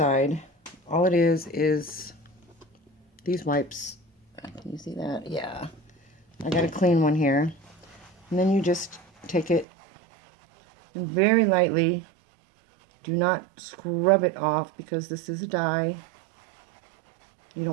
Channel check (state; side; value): drops out; left; at 9.7 s